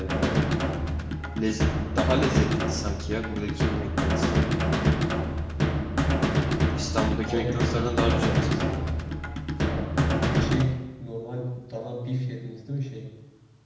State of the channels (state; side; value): identical; both; correlation 1.00